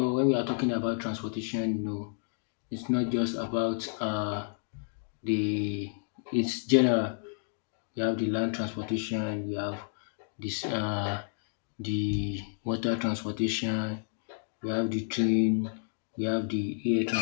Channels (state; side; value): silent; right; digital silence